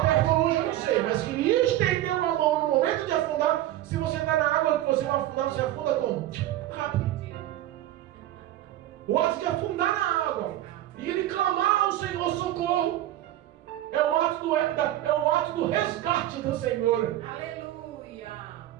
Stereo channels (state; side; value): quieter; left; 13.9 dB